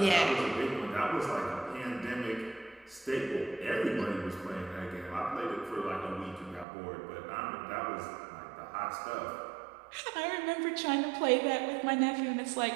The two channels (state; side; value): drops out; left; at 6.7 s